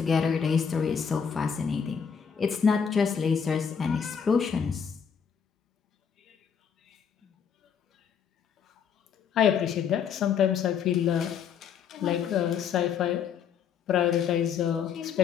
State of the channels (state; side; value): quieter; right; 7.2 dB